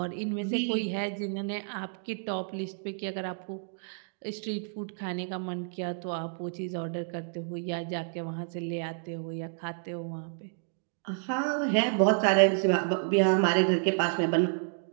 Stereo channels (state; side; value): silent; left; digital silence